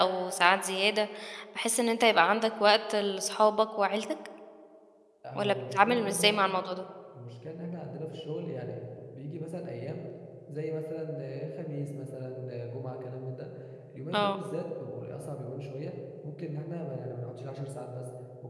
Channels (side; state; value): both; identical; correlation 1.00